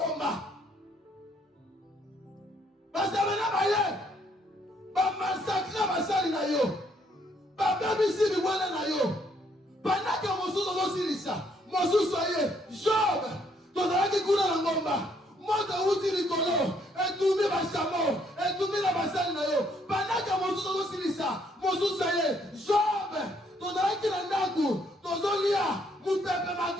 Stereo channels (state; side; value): normal; both; correlation 0.69